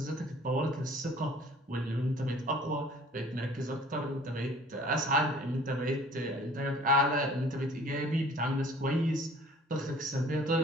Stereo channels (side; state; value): both; normal; correlation 0.51